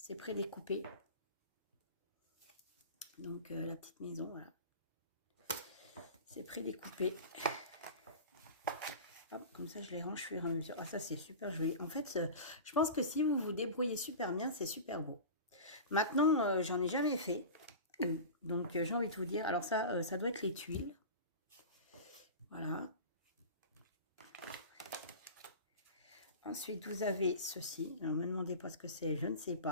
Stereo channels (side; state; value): both; inverted; correlation -0.32